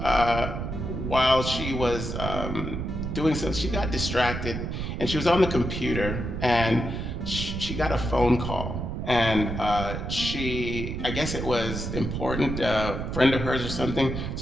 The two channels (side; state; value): right; noise; rumble, 4 dB below the sound